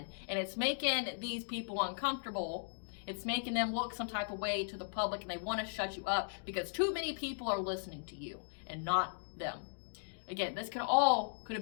and it's making these people uncomfortable. It's making them look some type of way to the public, and they want to shut you up because too many people are listening to you and not them. Again, this could have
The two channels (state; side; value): silent; right; digital silence